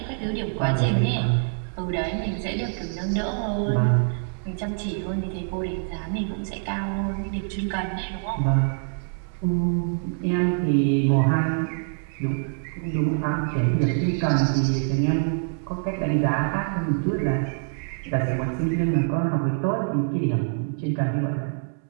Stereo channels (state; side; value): silent; left; 62 dB below the other